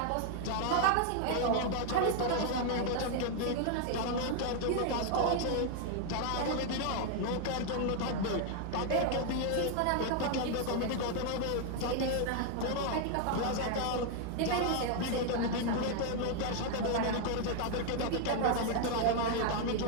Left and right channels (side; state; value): both; different; correlation 0.00